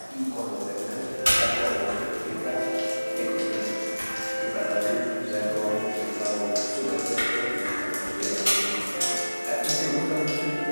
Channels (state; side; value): inverted; both; correlation -1.00